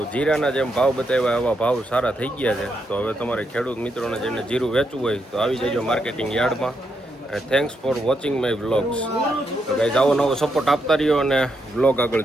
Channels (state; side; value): normal; both; correlation 0.81